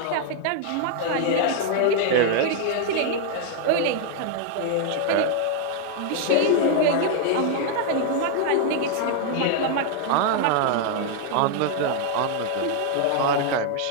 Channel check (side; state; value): both; different; correlation 0.00